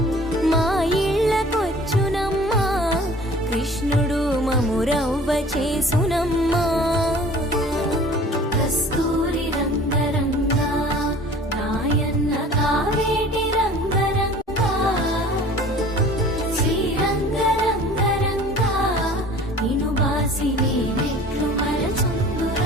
మా ఇళ్ళకొచ్చునమ్మా కృష్ణుడు మమురవ్వ చేసునమ్మా కస్తూరి రంగరంగా నాయన్న కావేటి రంగరంగా శ్రీరంగరంగరంగా నిను బాసి నేనెట్లు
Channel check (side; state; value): both; normal; correlation 0.47